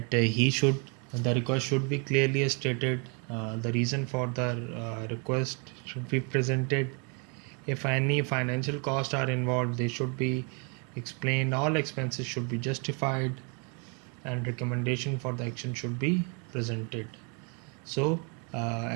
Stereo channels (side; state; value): left; quieter; 35.5 dB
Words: the request should be clearly stated, the reason for the request should be presented. If any financial costs are involved, they should be explained. All expenses should be justified, and recommendation for the action should be presented. So